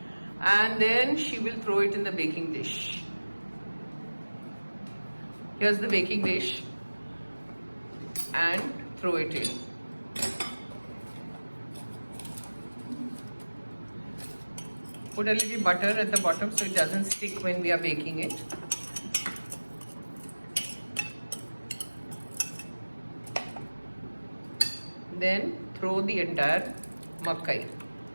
And then she will throw it in the baking dish. Here's the baking dish. And throw it in. Put a little butter at the bottom so it doesn't stick when we are baking it. Then throw the entire makai.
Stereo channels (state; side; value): inverted; both; correlation -1.00